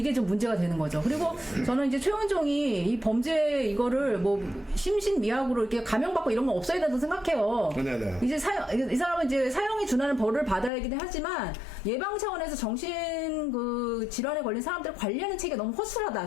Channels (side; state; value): right; drops out; at 10.7 s